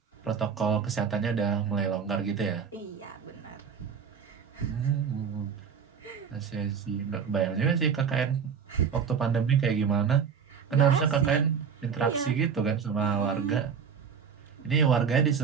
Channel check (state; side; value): quieter; left; 6.8 dB